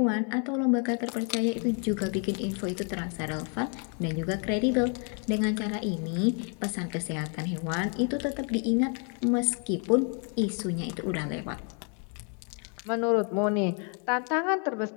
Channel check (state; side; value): quieter; right; 39.7 dB